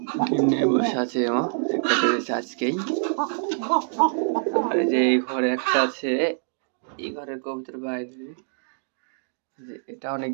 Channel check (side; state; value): left; silent; digital silence